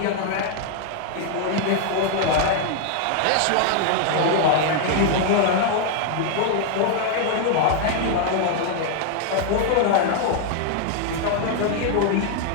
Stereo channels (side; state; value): both; different; correlation 0.00